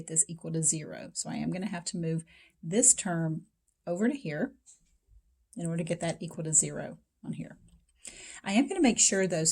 this equal to 0. So I am going to have to move this term over to here in order to get that equal to 0 on here. I am going to make sure, though,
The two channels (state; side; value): identical; both; correlation 1.00